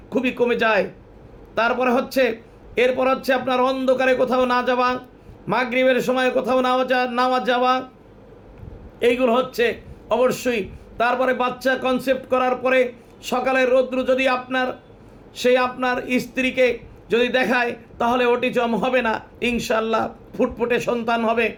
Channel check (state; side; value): identical; both; correlation 1.00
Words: খুবই কমে যায়। এরপর হচ্ছে আপনার অন্ধকারে কোথাও না যাওয়া, মাগরিবের সময় কোথাও না যাওয়া, এইগুলো হচ্ছে অবশ্যই। তারপরে বাচ্চা কনসেপ্ট করার পরে সকালের রৌদ্র যদি আপনার স্ত্রীকে যদি দেখায়, তাহলে অটিজম হবে না, ইনশাল্লাহ ফুটফুটে সন্তান হবে।